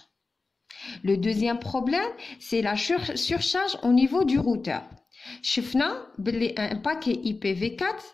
Le deuxième problème, c'est la surcharge au niveau du routeur. شفنا باللي un paquet IPv4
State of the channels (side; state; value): right; quieter; 3.8 dB